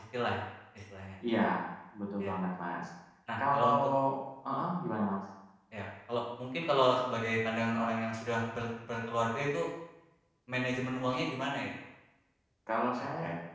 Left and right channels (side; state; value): both; identical; correlation 1.00